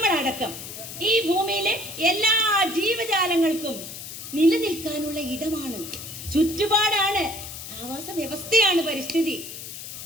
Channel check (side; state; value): left; noise; hiss, 10 dB below the sound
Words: ഈ ഭൂമിയിലെ എല്ലാ ജീവജാലങ്ങൾക്കും നിലനിൽക്കാനുള്ള ഇടമാണ്, ചുറ്റുപാടാണ്, ആവാസ വ്യവസ്ഥയാണ് പരിസ്ഥിതി.